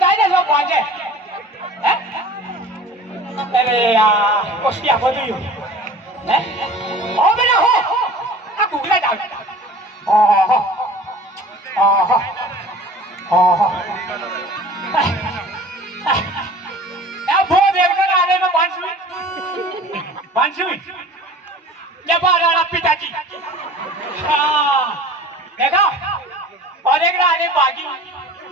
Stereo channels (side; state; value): both; normal; correlation 0.43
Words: जाए ना सब भागे हैं अरे यार कोशिया बोली हो हैं ओ बेटा हो आ गोखरा जाओ वो देखकर आने में बांसुई जब राणा पिताजी देखा और एक आने बागी